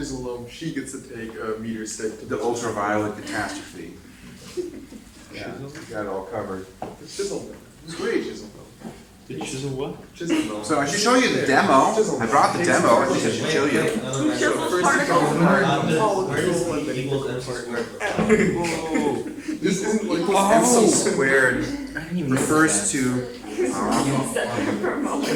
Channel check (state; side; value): identical; both; correlation 1.00